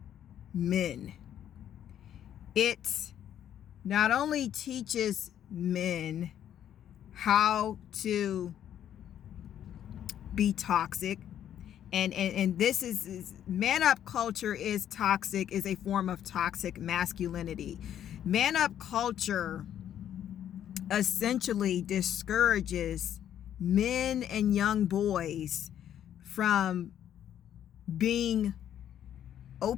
men. It not only teaches men how to be toxic, and this is man up culture is toxic, is a form of toxic masculinity. Man up culture essentially discourages men and young boys from being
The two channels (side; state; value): right; quieter; 10.4 dB